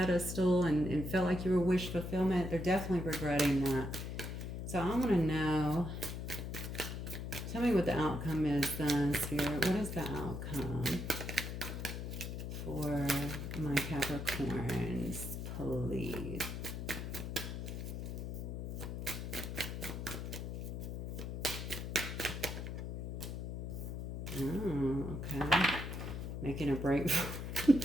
and felt like you were wish fulfillment. They're definitely regretting that. So I want to know, tell me what the outcome is then, Spirit. What is the outcome for my Capricorns, please? Oh, okay. Making a break.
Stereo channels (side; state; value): left; noise; hum, 5 dB below the sound